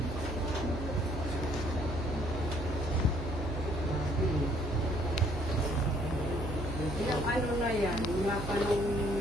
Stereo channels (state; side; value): noise; right; hum, 6 dB below the sound